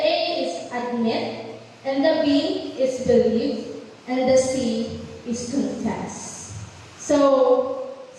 is admit, and the B is believe, and the C is confess. So,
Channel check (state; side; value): identical; both; correlation 1.00